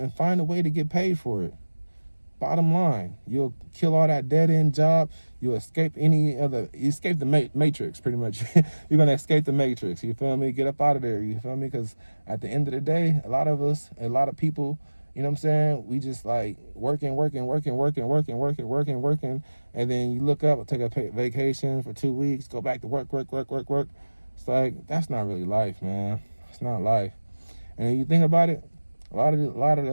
find a way to get paid for it. Bottom line, you'll kill all that dead-end job. You'll escape the matrix, pretty much. You're going to escape the matrix. You feel me? Get up out of there. You feel me? Because at the end of the day, a lot of people, you know what I'm saying? We just like working. And then you look up, take a vacation for 2 weeks, go back to work. It's like, that's not really life, man. It's not life. And if you think about it, a lot of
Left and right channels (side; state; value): both; inverted; correlation -1.00